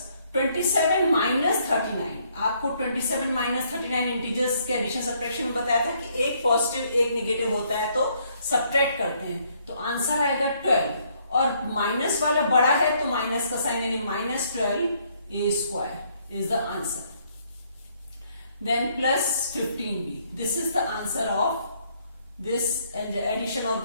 27 minus 39। आपको 27 minus 39 इंटीजर्स के एडिशन सब्ट्रैक्शन में बताया था कि एक पॉजिटिव एक नेगेटिव होता है तो सब्ट्रैक्ट करते हैं। तो आंसर आएगा 12, और माइनस वाला बड़ा है तो माइनस का साइन, यानी minus 12a square is the answer. Then plus 15b, this is the answer of this addition of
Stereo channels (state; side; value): inverted; both; correlation -0.68